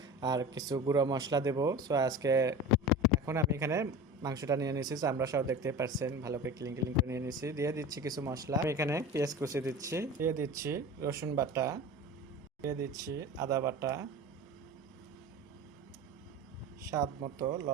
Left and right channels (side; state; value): both; normal; correlation 0.33